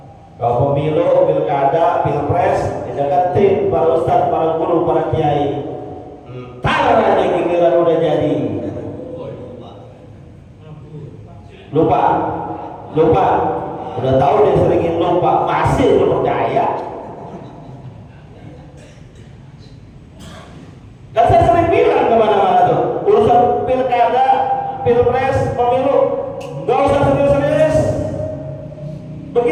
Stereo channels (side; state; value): both; identical; correlation 1.00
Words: Kalau pemilu, pilkada, pilpres, dideketin para ustadz, para guru, para kiai. Entar aja giliran udah jadi. Lupa. Udah tahu dia seringin lupa, masih lu percaya? Dan saya sering bilang kemana-mana tuh, urusan pilkada, pilpres, pemilu, nggak usah serius-serius.